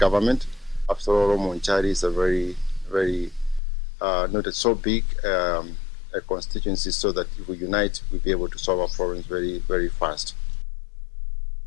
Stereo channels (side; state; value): right; drops out; at 3.6 s